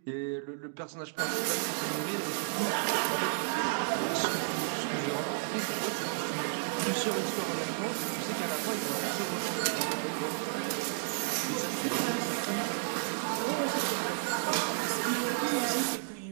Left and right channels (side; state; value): left; silent; digital silence